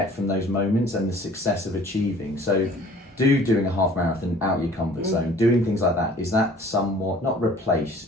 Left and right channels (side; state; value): both; normal; correlation 0.50